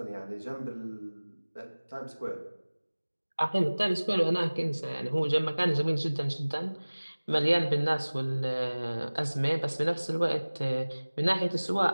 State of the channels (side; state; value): both; inverted; correlation -1.00